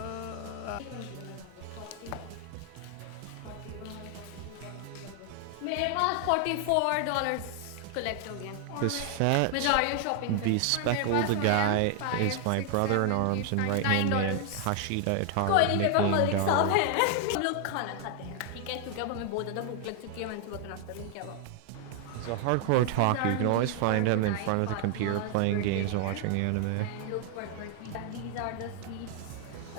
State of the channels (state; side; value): different; both; correlation 0.00